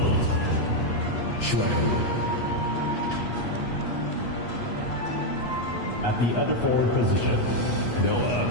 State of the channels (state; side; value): late; right; 8.3 ms